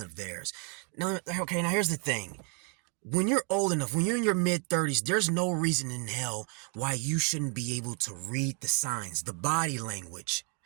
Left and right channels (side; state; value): left; quieter; 35.6 dB